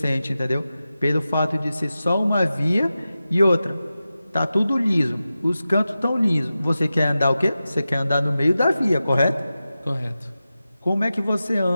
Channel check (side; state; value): both; inverted; correlation -0.93